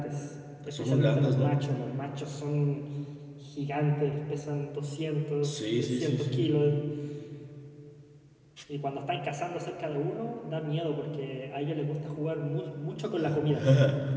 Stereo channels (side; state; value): both; identical; correlation 1.00